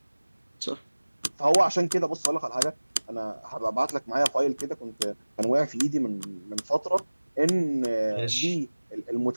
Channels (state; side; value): inverted; both; correlation -1.00